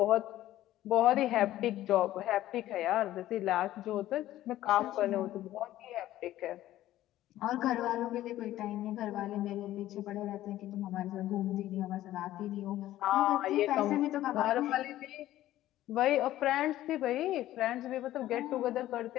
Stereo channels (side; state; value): right; quieter; 14.2 dB